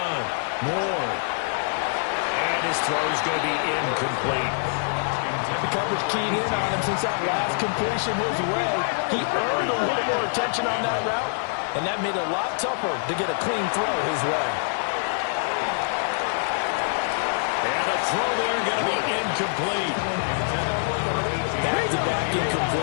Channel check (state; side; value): silent; right; 62 dB below the other